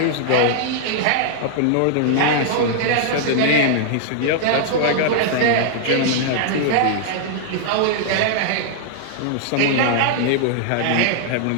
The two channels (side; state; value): both; different; correlation -0.01